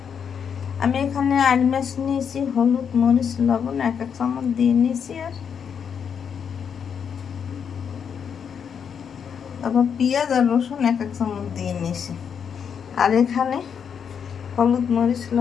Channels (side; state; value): right; quieter; 7.3 dB